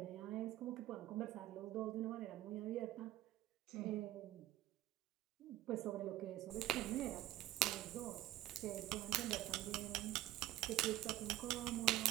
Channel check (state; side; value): quieter; left; 14.4 dB